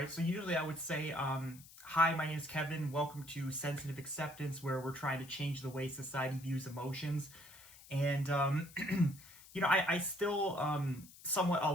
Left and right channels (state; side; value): noise; left; hiss, 20 dB below the sound